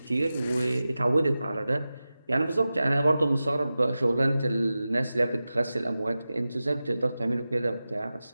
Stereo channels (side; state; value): both; inverted; correlation -0.94